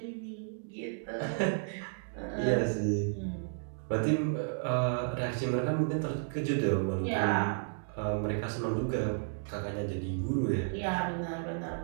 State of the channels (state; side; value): silent; left; digital silence